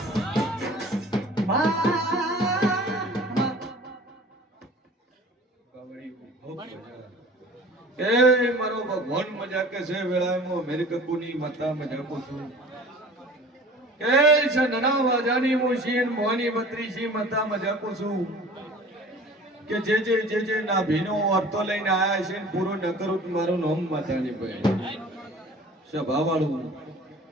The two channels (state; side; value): normal; both; correlation 0.45